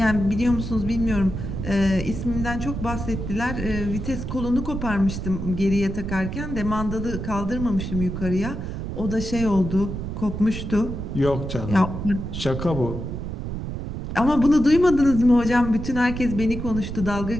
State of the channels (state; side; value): noise; right; rumble, 6 dB below the sound